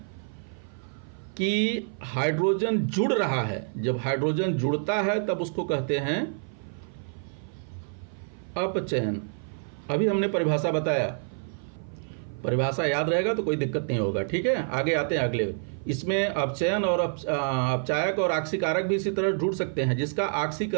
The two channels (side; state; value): left; silent; 55 dB below the other